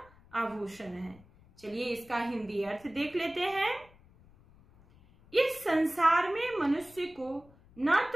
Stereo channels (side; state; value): left; noise; rumble, 26 dB below the sound